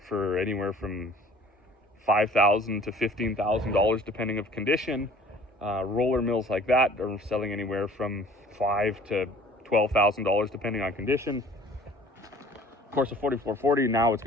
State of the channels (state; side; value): normal; both; correlation 0.50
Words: for anywhere from $5,000 to $15,000 depending of condition. Roller mills like that are selling anywhere from $5,000 to $12,000 depending on condition. Of course, a 4440 now it's